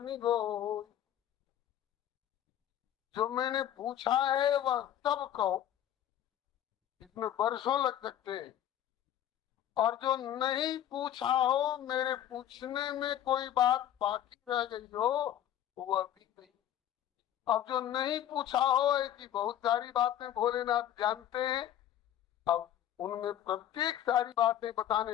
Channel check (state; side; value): quieter; right; 11.2 dB